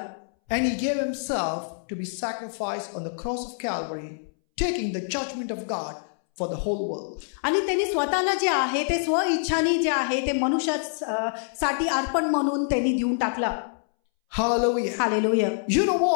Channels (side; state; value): right; silent; 61 dB below the other